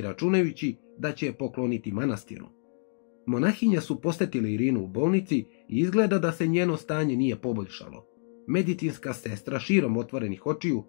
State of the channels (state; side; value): silent; right; digital silence